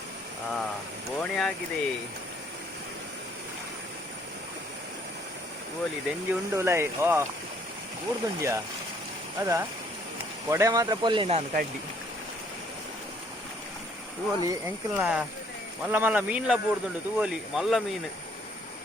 ಬೋಣಿ ಆಗಿದೆ ಓಲಿ ದೆಂಜಿ ಉಂಡು ಲೈ ಬೂರ್ದುಂಜಿಯಾ ಅದಾ ಕೊಡೆ ಮಾತ್ರ ಪೊಲ್ಲಿ ನಾನು ಕಡ್ಡಿ ತೂವಲಿ ಎಂಕಲ್ನ ಮಲ್ಲ ಮಲ್ಲ ಮೀನ್ಲ ಬೂರ್ದುಂಡು ತೂವಲಿ ಮಲ್ಲ ಮೀನು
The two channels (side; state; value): both; normal; correlation 0.63